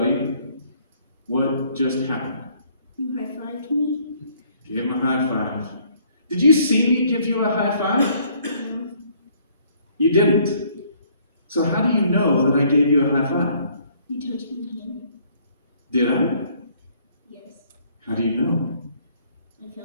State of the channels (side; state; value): both; inverted; correlation -0.62